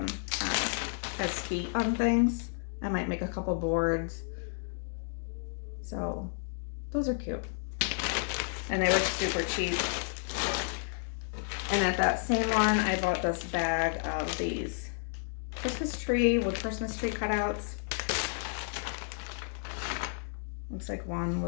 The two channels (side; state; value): right; silent; digital silence